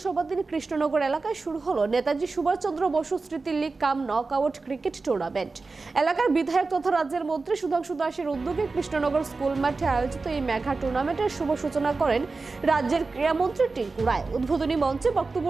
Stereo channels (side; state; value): left; quieter; 3.9 dB